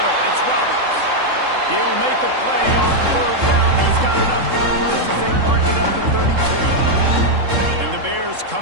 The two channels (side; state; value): left; late; 3.7 ms